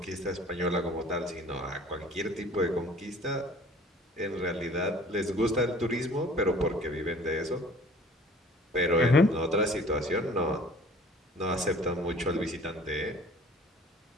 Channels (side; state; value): both; normal; correlation 0.49